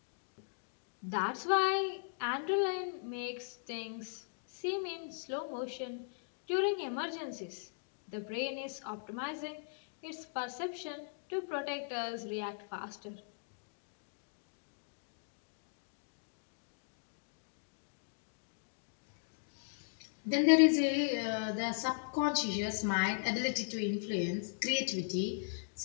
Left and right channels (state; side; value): silent; right; digital silence